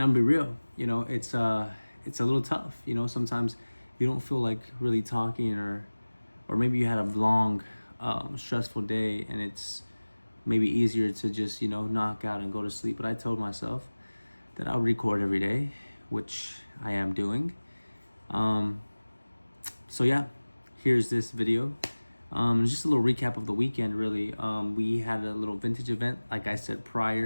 be real, it's a little tough. Sometimes you don't feel like really talking, or maybe you had a long, stressful day, and it's maybe easier to just knock out and go to sleep. But I told myself that I'll record every day, which I am doing. So yeah, here's this video. Just a little recap of the weekend, really. We had a little vintage event, like I said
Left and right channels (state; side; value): inverted; both; correlation -1.00